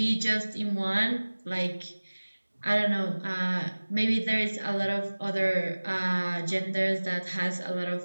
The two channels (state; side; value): inverted; both; correlation -1.00